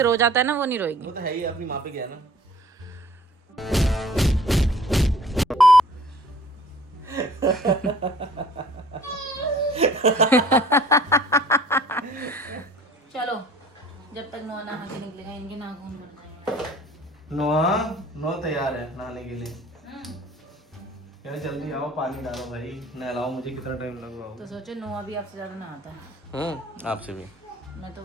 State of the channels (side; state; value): both; normal; correlation 0.51